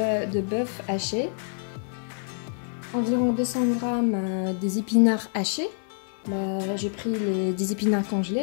bœuf haché, environ 200 g des épinards hachés. Là, j'ai pris des épinards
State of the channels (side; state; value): right; silent; 60 dB below the other